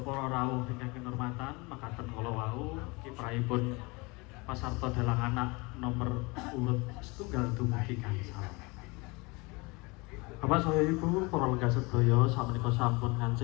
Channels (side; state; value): right; quieter; 26.5 dB